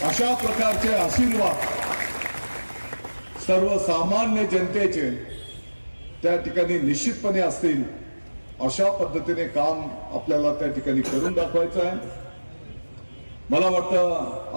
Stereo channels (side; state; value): both; inverted; correlation -1.00